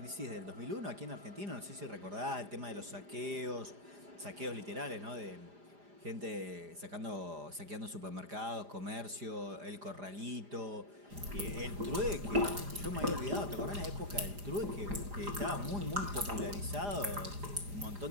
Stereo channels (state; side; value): late; left; 4.9 ms